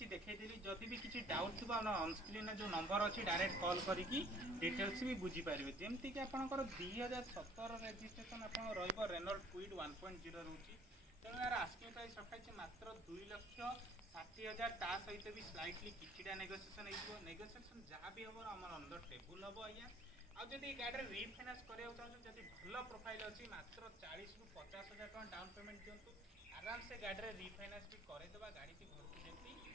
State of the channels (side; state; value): both; normal; correlation 0.56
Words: देखी जदि भी किसी डाउट थी ऑनस्क्रीन जो नंबर अच्छी डायरेक्ट कॉल करके डिटेल्स भी बुझीपारे। जमती कि आपंकर 2017 रेजिस्ट्रेशन आप रेनॉल्ट क्विड 1.0 रोचे। तेणु यार आस्किंग प्राइस रखाई मात्र 2,60,000। ता सहित भी स्लाइटली किछिटा नेगोशिएशन नेगोशिएशन जहाँ भी हम आम अंदर टेबुल हम आज्ञा। आदि गाड़ी रिफाइनान्स कराया चाहिए भल प्रोफाइल अच्छी मात्र 40,000 ରୁ 50,000 टका डाउन पेमेंट दिंतु आराम से गाड़ी रिफाइनान्स भी करदेवा। गाड़ी घर को जल्दी